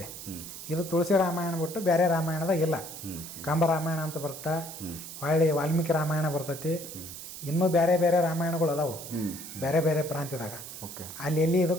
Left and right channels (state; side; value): noise; right; hiss, 11 dB below the sound